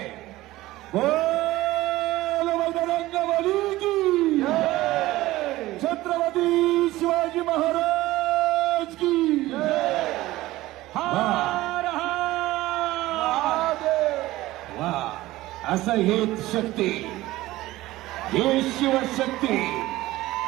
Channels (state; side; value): quieter; left; 17.3 dB